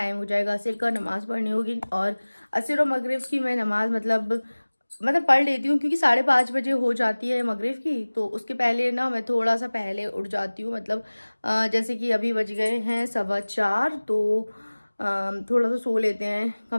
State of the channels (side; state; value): both; inverted; correlation -1.00